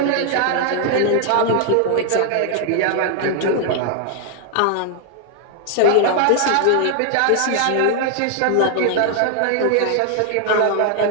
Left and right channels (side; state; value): both; different; correlation 0.00